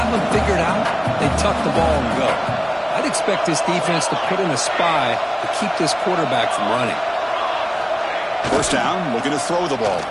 them figured out, they tuck the ball and go. I'd expect this defense to put in a spy to keep this quarterback from running. First down, looking to throw the ball.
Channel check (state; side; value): identical; both; correlation 1.00